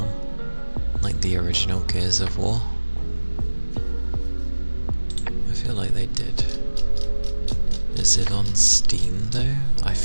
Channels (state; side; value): inverted; both; correlation -1.00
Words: Like the original Gears of War? I feel like they did. Is it on Steam though? I